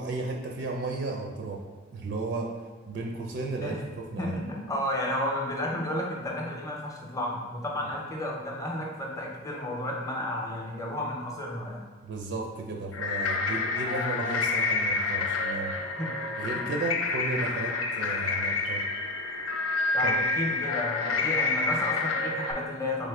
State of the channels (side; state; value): both; normal; correlation 0.18